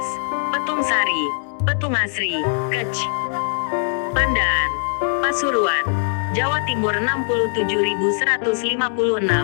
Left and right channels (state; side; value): silent; right; digital silence